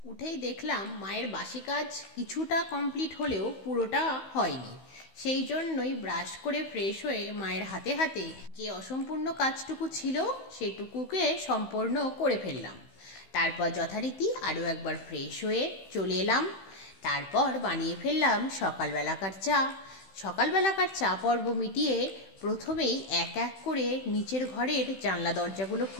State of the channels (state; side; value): late; right; 16 ms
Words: উঠেই দেখলাম মায়ের বাসি কাজ কিছুটা কমপ্লিট হলেও পুরোটা হয়নি। সেই জন্যই ব্রাশ করে ফ্রেশ হয়ে মায়ের হাতে হাতে যে অসম্পূর্ণ কাজটুকু ছিল সেটুকুকে সম্পূর্ণ করে ফেললাম। তারপর যথারীতি আরও একবার ফ্রেশ হয়ে চলে এলাম। তারপর বানিয়ে ফেললাম সকালবেলাকার চা। সকালবেলাকার চা পর্ব মিটিয়ে প্রথমেই এক এক করে নিচের ঘরের জানলা দরজাগুলো